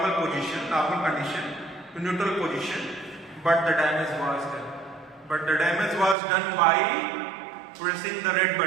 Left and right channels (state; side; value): drops out; left; at 6.2 s